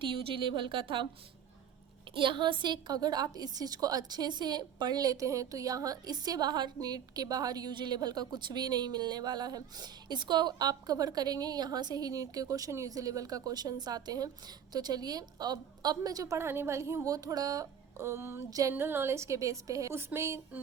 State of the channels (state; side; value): quieter; left; 8.6 dB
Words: यूजी लेवल का था। यहाँ से अगर आप इस चीज़ को अच्छे से पढ़ लेते हैं तो यहाँ इससे बाहर, नीट के बाहर यूजी लेवल का कुछ भी नहीं मिलने वाला है। इसको आप कवर करेंगे, यहाँ से ही नीट के क्वेश्चन, यूजी लेवल का क्वेश्चंस आते हैं। तो चलिए, अब मैं जो पढ़ाने वाली हूँ वो थोड़ा जनरल नॉलेज के बेस पे है, उसमें